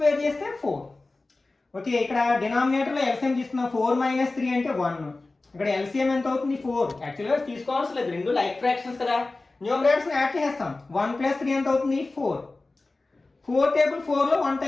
చేస్తే 4. ఓకే, ఇక్కడ డినామినేటర్లో ఎల్సిఎం తీసుకున్నాం. 4 మైనస్ 3 అంటే 1. ఇక్కడ ఎల్సిఎం ఎంత అవుతుంది, 4. యాక్చువల్గా తీసుకోవాల్సిన లేదు, రెండు లైక్ ఫ్రాక్షన్స్ కదా. న్యూమరేటర్స్ని యాడ్ చేస్తాం. 1 + 3 ఎంత అవుతుంది, 4. 4 టేబుల్ 4లో 1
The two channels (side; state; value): right; quieter; 3.3 dB